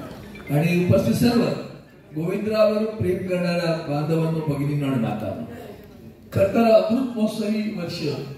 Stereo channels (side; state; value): both; identical; correlation 1.00